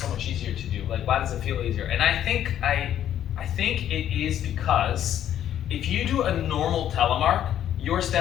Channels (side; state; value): right; quieter; 10.8 dB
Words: much easier to do? Why does it feel easier? And I think it is because if you do a normal telemark, your